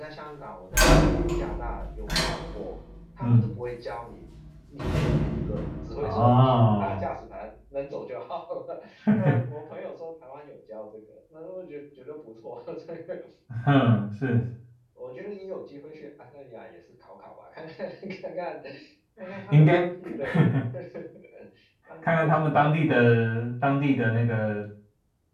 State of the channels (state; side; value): identical; both; correlation 1.00